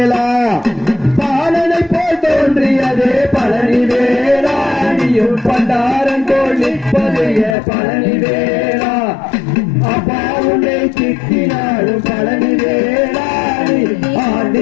பாலனை போல் தோன்றியதே பழனி வேளா நீயும் பண்டாரன் போல் நிற்பதைய பழனி வேளா அப்பா உன்னை திட்டினாலும் பழனி வேளா நீ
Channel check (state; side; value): drops out; right; at 7.6 s